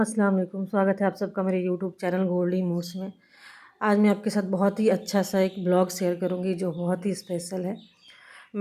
अस्सलाम वालेकुम। स्वागत है आप सबका मेरे यूट्यूब चैनल गोल्डी मूड्स में। आज मैं आपके साथ बहुत ही अच्छा सा एक ब्लॉग शेयर करूंगी जो बहुत ही स्पेशल है।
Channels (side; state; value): both; identical; correlation 1.00